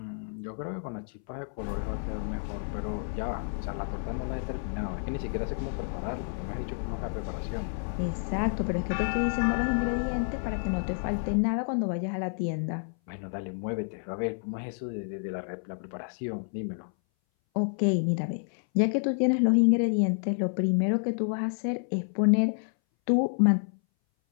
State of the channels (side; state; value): right; silent; 58 dB below the other